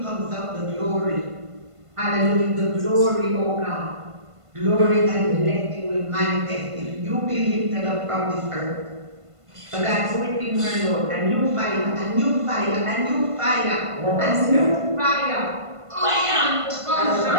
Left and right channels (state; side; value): late; left; 1.5 ms